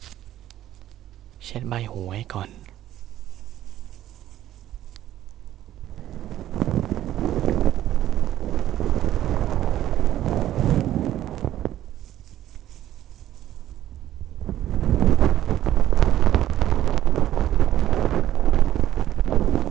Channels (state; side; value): quieter; left; 12.8 dB